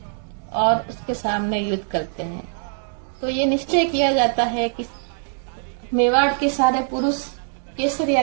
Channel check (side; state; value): left; silent; digital silence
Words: और उसके सामने युद्ध करते हैं। तो ये निश्चय किया जाता है कि मेवाड़ के सारे पुरुष केसरिया